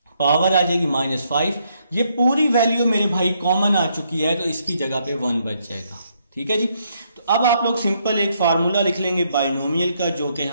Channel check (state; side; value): inverted; both; correlation -0.74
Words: पावर आ जाएगी -5। ये पूरी वैल्यू मेरे भाई कॉमन आ चुकी है तो इसकी जगह पे 1 बच जाएगा। ठीक है जी, तो अब आप लोग सिंपल एक फार्मूला लिख लेंगे बाइनोमियल का, जो कि